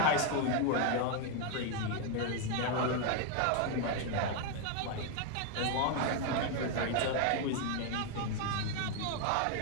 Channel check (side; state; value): both; different; correlation 0.01